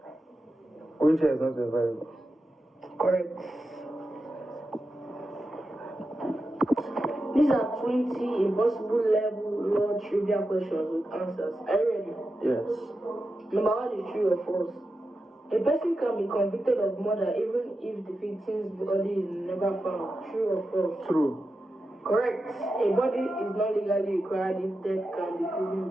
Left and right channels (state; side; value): normal; both; correlation 0.90